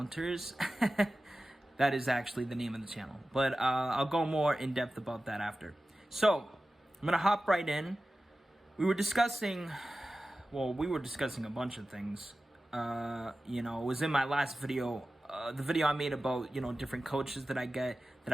That is actually the name of the channel. But I'll go more in depth about that after. So, I'm going to hop right in. We were discussing a bunch of things. It was in my last video, the video I made about, different coaches that I get that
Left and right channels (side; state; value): both; normal; correlation 0.95